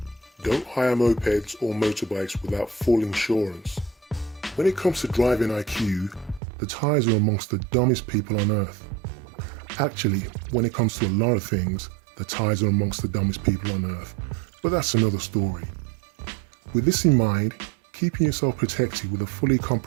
Don't hire mopeds or motorbikes without full insurance. When it comes to driving IQ, the Thais are amongst the dumbest people on earth. Actually, when it comes to a lot of things, the Thais are amongst the dumbest people on earth, but that's another story. With this in mind, keeping yourself protected with a fully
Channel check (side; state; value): left; drops out; at 6.4 s